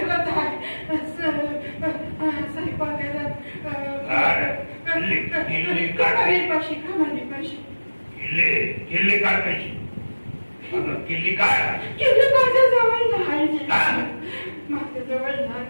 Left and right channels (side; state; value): both; inverted; correlation -1.00